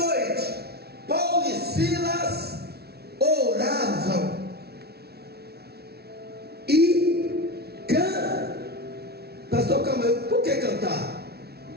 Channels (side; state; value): left; late; 0.46 ms